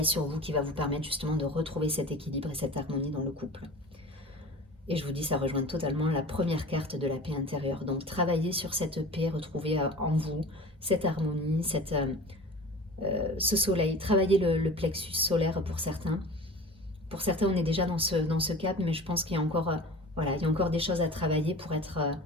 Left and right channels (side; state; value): both; normal; correlation 0.38